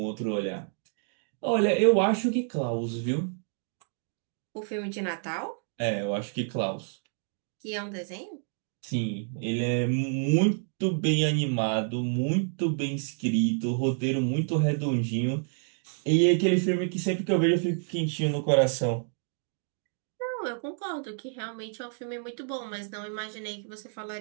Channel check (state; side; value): silent; left; 59 dB below the other